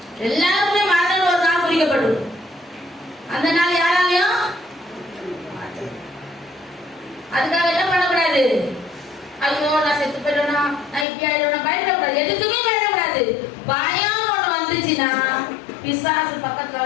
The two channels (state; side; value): drops out; right; at 11.1 s